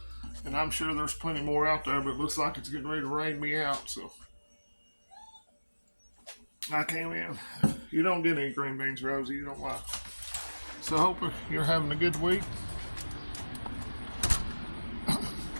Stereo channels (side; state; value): both; inverted; correlation -1.00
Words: and I'm sure there's plenty more out there, but it looks like it's getting ready to rain me out, so I came in. You don't get any green beans, Rosie, you don't like. So I hope you're having a good week. I